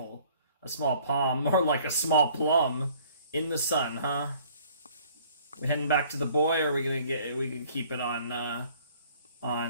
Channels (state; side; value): inverted; both; correlation -0.55